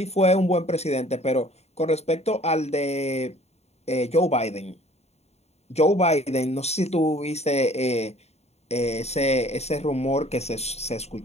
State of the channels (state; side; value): late; right; 0.31 ms